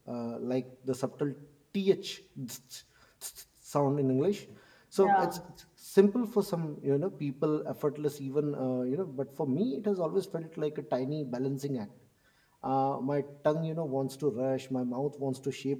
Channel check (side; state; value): both; identical; correlation 1.00